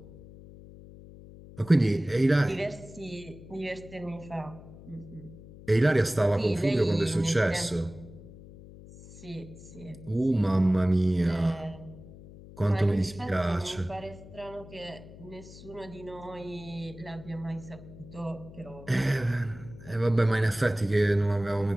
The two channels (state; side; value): noise; left; hum, 18 dB below the sound